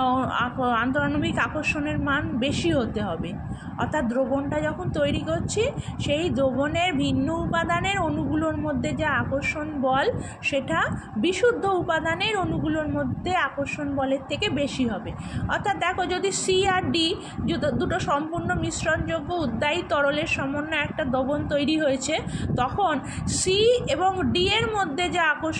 আন্তরাণবিক আকর্ষণের মান বেশি হতে হবে। অর্থাৎ দ্রবণটা যখন তৈরি করছি, সেই দ্রবণের ভিন্ন উপাদানের অণুগুলোর মধ্যে যা আকর্ষণ বল, সেটা বিশুদ্ধ উপাদানের অণুগুলোর মধ্যে আকর্ষণ বলের থেকে বেশি হবে। অর্থাৎ দেখো, যদি সি আর ডি দুটো সম্পূর্ণ মিশ্রণযোগ্য উদ্বায়ী তরলের সমন্বয়ে একটা দ্রবণ তৈরি হয়েছে, তখন সি এবং ডি এর মধ্যে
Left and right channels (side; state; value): both; identical; correlation 1.00